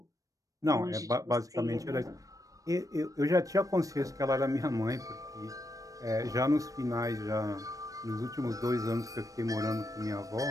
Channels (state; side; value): late; left; 0.16 ms